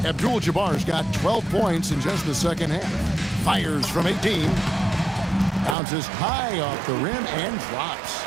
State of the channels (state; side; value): drops out; left; at 5.8 s